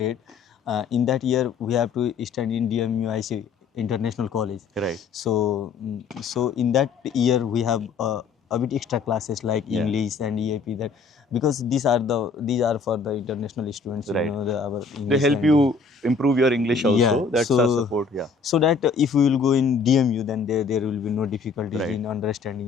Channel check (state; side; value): quieter; right; 5.0 dB